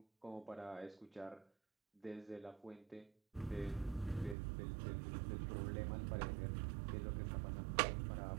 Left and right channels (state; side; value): drops out; left; at 4.4 s